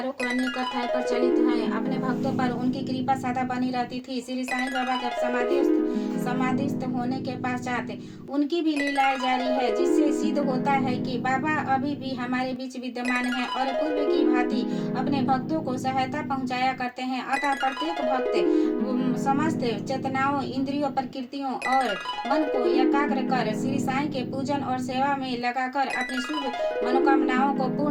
को अनेक कथाएं प्रचलित हैं। अपने भक्तों पर उनकी कृपा सदा बनी रहती थी। श्री साईं बाबा के समाधिस्थ होने के पश्चात उनकी भी लीलाएं जारी है, जिससे सिद्ध होता है कि बाबा अभी भी हमारे बीच विद्यमान है और पूर्व की भांति अपने भक्तों को सहायता पहुंचाया करते हैं। अतः प्रत्येक भक्त समस्त चेतनाओं, इंद्रियों, प्रकृतियों और मन को एकाग्र कर श्री साईं के पूजन और सेवा में लगाकर अपनी शुभ मनोकामनाओं को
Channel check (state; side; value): identical; both; correlation 1.00